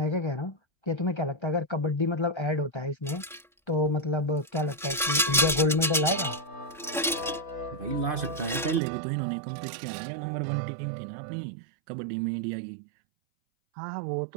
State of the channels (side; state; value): left; drops out; at 8.8 s